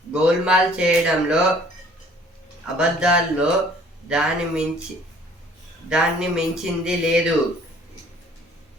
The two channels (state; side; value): normal; both; correlation 0.55